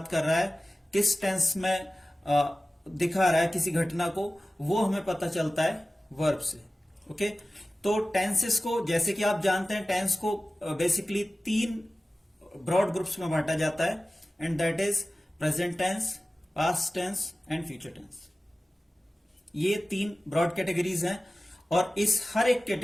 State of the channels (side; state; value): both; normal; correlation 0.96